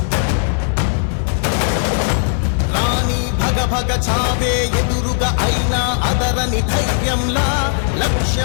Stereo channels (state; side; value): silent; right; 58 dB below the other